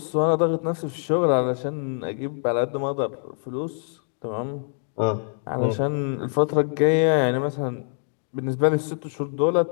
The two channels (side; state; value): right; silent; 62 dB below the other